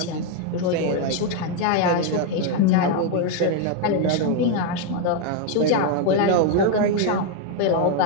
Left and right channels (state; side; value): different; both; correlation 0.01